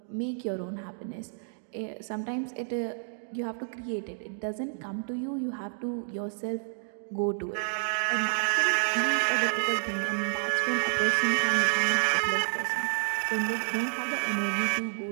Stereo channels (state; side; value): silent; left; digital silence